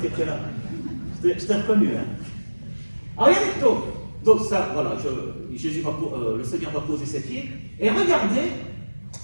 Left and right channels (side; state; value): both; inverted; correlation -1.00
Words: étais là. Je t'ai reconnu, hein. Alors, regardez, donc ça, voilà, le Seigneur va poser ses pieds. Et regardez,